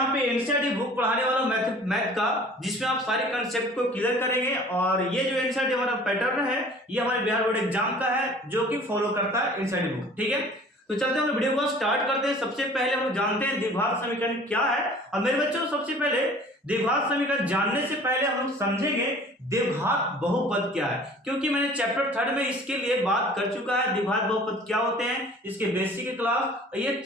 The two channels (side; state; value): both; normal; correlation 0.48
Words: पे एनसीईआरटी बुक पढ़ाने वाला हूँ मैथ का, जिसमें आप सारे कंसेप्ट को क्लियर करेंगे। और ये जो एनसीईआरटी हमारा पैटर्न है ये हमारे बिहार बोर्ड एग्जाम का है, जो कि फॉलो करता है एनसीईआरटी बुक। ठीक है, तो चलते हैं हम वीडियो को स्टार्ट करते हैं। सबसे पहले हम जानते हैं द्विघात समीकरण क्या है। और मेरे बच्चों सबसे पहले द्विघात समीकरण जानने से पहले हम समझेंगे द्विघात बहुपद क्या है, क्योंकि मैंने चैप्टर 3 में इसके लिए बात कर चुका है। द्विघात बहुपद क्या होते हैं, इसके बेसिक क्लास, ये